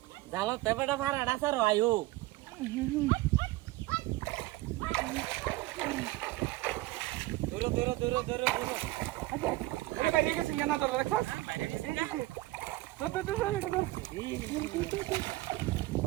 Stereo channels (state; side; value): quieter; left; 18.9 dB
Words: জালা তেবেটা ভাড়াটা স্যার আয়ু দূর আরে বাইরে গেছে না তো রাখছ বাইরে গেছে